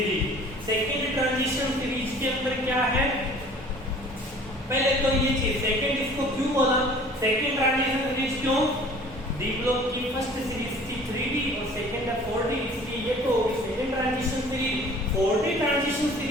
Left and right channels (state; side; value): normal; both; correlation 0.49